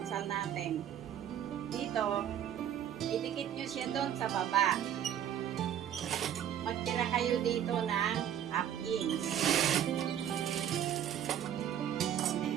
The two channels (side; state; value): left; quieter; 10.1 dB